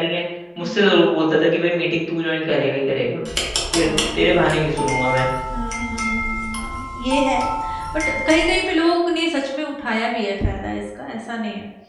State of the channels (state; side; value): identical; both; correlation 1.00